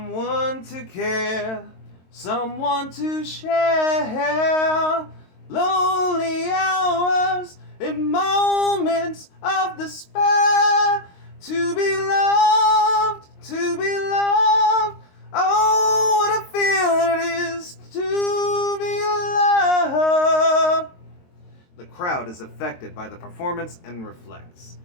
to care, someone to share, lonely hours in moments of despair. To be loved, oh, what a feeling it is to be loved. The crowd is affected by the performance and reflects.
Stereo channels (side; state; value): right; late; 22 ms